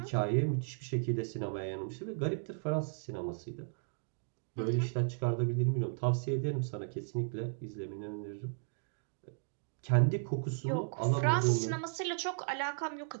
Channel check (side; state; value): left; silent; digital silence